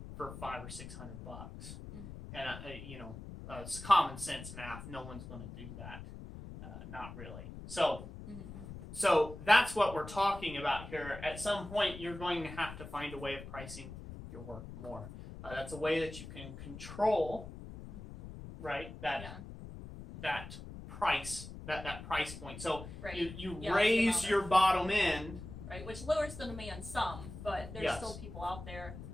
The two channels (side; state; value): left; noise; rumble, 12 dB below the sound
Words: for $500 or $600 bucks. And it's common sense math. No one's going to do that. Not really. So that's what we're talking about here. At some point, you're going to have to find a way of pricing your work more. That's a way that you can control, right? That price, that price point. So you raise your bottom end, right? Which lowers the demand some, but there's still people out there.